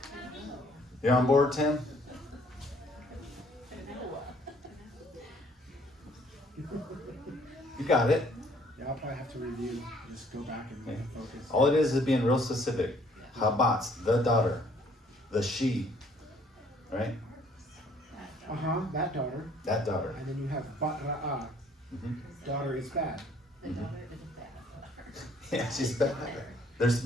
You on board, Tim? You got it. Yeah, I'll probably have to review, just go back and focus. All it is being real specific. Habatz, the daughter, the she, right? Uh-huh, that daughter. That daughter. And then you have Batra'ah, daughter is bad. The daughter is a bad daughter. Yeah, she's bad.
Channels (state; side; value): normal; both; correlation 0.61